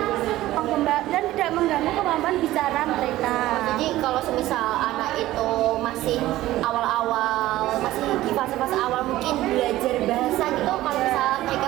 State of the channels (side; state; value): left; quieter; 15.7 dB